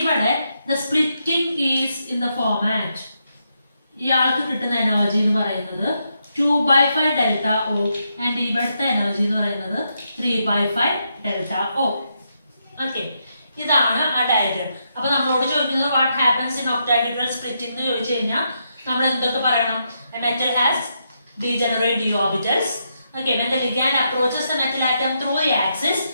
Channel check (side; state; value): both; inverted; correlation -0.81